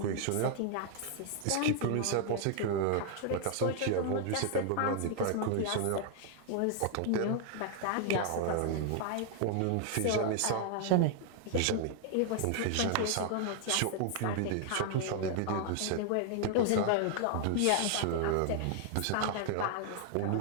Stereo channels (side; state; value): both; different; correlation 0.00